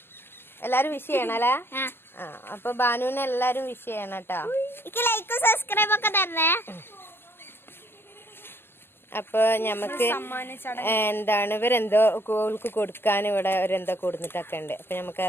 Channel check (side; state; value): right; late; 0.11 ms